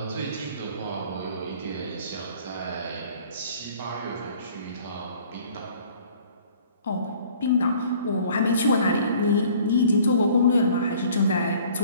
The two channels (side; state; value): both; inverted; correlation -0.53